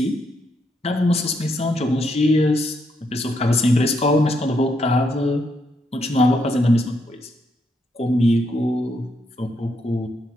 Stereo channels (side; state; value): both; normal; correlation 0.77